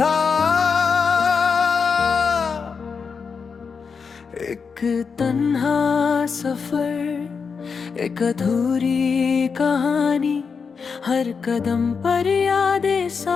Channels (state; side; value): quieter; right; 5.6 dB